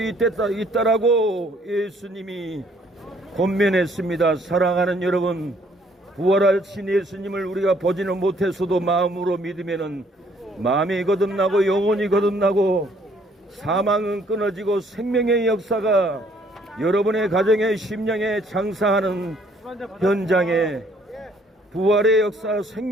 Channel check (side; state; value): both; normal; correlation 0.63